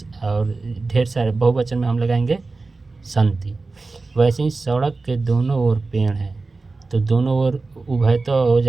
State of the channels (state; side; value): quieter; left; 3.7 dB